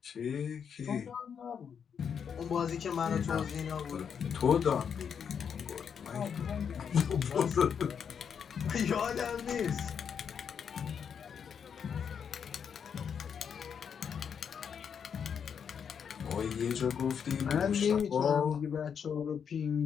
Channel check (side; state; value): right; quieter; 7.3 dB